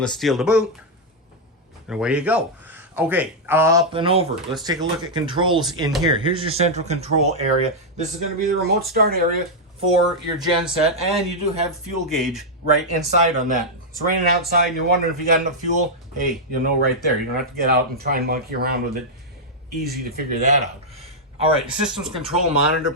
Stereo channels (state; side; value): normal; both; correlation -0.04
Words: steel to boot. And away you go. Okay, up and over. Let's take a look at controls in here. Here's your central control area. This is going to be the remote start area for your genset, and you do have fuel gauge right inside on that. It's raining outside and you're wondering if you got enough fuel. Hey, you'll know right there. You don't have to get out and try and monkey around with it. Easy to figure that out. All right, the systems control monitor